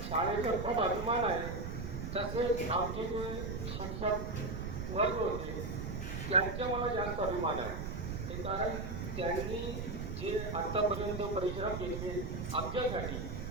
शाळेचा खूप अभिमान आहे. तसेच आमचे जे शिक्षक वर्ग होते त्यांचा मला जास्त अभिमान आहे. ते कारण त्यांनी जे आत्तापर्यंत परिश्रम केले आमच्यासाठी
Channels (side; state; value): right; noise; rumble, 4 dB below the sound